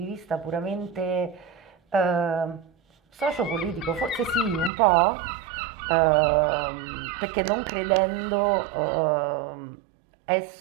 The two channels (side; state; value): left; drops out; at 4.7 s